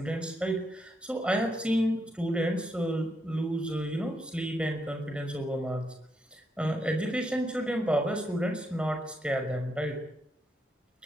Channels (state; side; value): normal; both; correlation 0.80